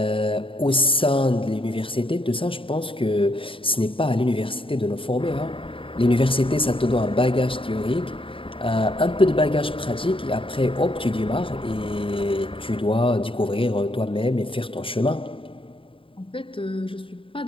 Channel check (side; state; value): right; late; 0.26 ms